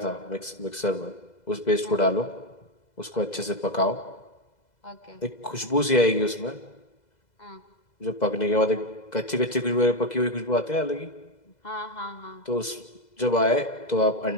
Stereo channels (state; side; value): late; right; 2.0 ms